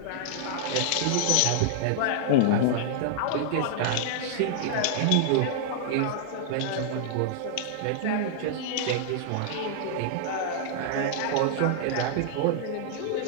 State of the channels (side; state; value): both; different; correlation -0.01